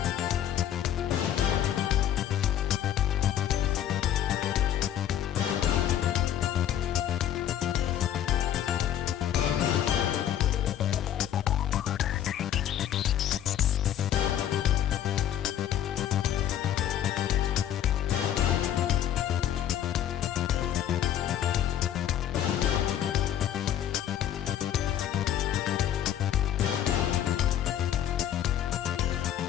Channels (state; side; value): quieter; right; 10.7 dB